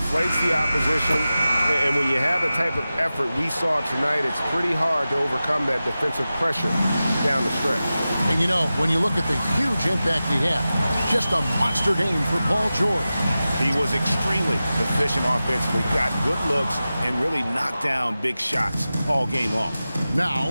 the opposition, and when you have the type of effort we saw tonight, it's pretty hard to overcome that defensive pressure down the stretch. And you know, when you look at the huge impact he had, just a monster game for Paul George. He was extremely efficient offensively, got good looks, and really knocked down big shots all game long.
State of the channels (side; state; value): both; inverted; correlation -0.94